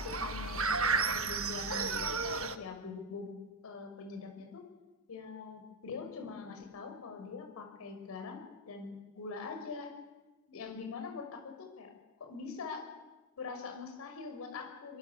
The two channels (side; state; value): both; normal; correlation 0.06